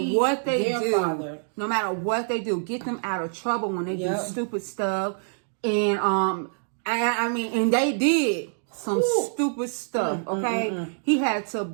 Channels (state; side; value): silent; left; digital silence